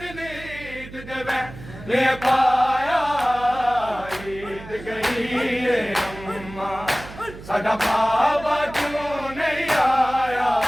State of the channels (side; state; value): right; noise; hum, 15 dB below the sound